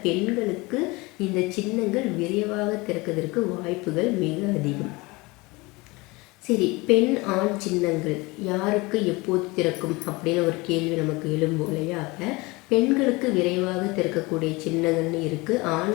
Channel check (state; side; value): quieter; right; 23.8 dB